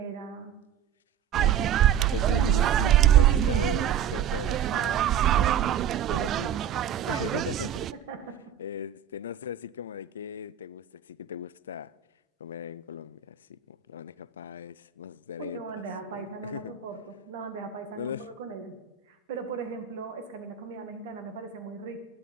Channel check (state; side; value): quieter; left; 8.9 dB